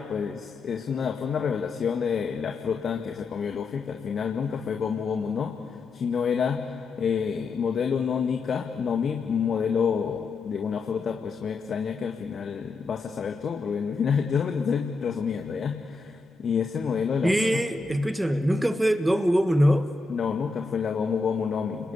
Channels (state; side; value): quieter; right; 3.7 dB